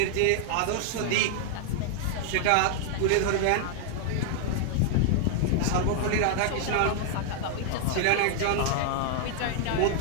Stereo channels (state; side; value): different; both; correlation 0.00